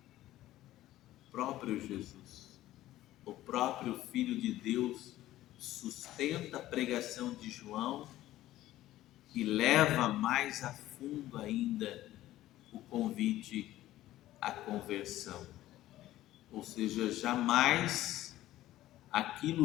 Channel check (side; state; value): right; quieter; 14.8 dB